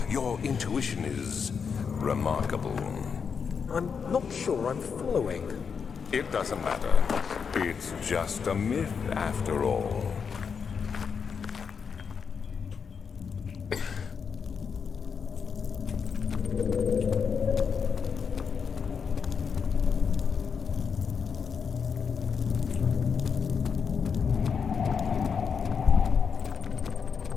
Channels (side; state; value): right; quieter; 6.2 dB